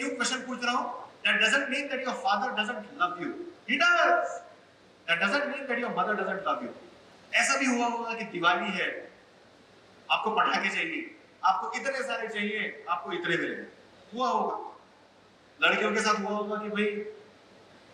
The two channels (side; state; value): both; identical; correlation 1.00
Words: क्वेश्चन पूछ रहा हूं? That doesn't mean that your father doesn't love you. He does. That doesn't mean that your mother doesn't love you. ऐसा भी हुआ होगा कि दिवाली है, आपको पटाखे चाहिए, आपको इतने सारे चाहिए, आपको इतने मिलेंगे, हुआ होगा। लड़कियों के साथ हुआ होगा कि भाई